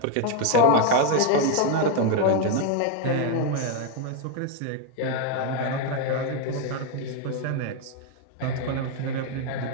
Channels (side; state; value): both; different; correlation 0.01